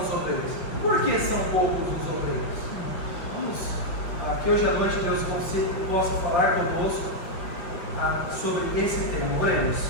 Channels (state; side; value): late; right; 5.4 ms